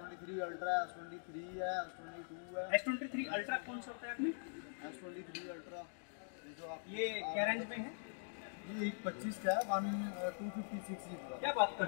अल्ट्रा है, S23 है, S22 है। S23 अल्ट्रा कौन सा होता है आपने? S23 अल्ट्रा जो आप ये क्या रेंज में है? ये 125 का है, 256 GB का। क्या बात कर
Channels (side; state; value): right; silent; digital silence